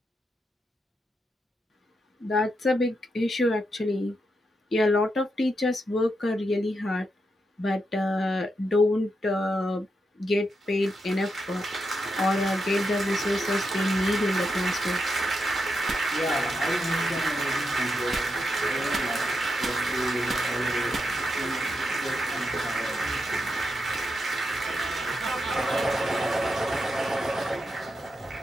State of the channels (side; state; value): both; normal; correlation 0.84